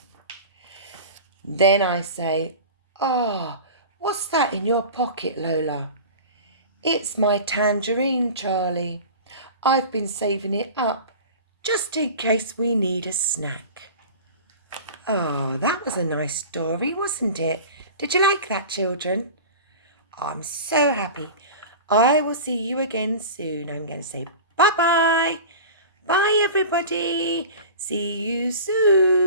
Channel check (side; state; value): both; inverted; correlation -0.35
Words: Then I say, "What's that in your pocket, Lola?" "It's my tangerine, Charlie. I've been saving it up just in case we need a snack." That was a nice story, wasn't it? Did you like that, children? I'm so happy. I will see you again soon. I'm going to say bye-bye. Bye, everybody. See you